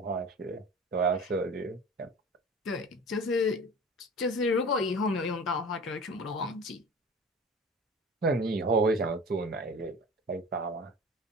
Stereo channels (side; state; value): both; normal; correlation 0.38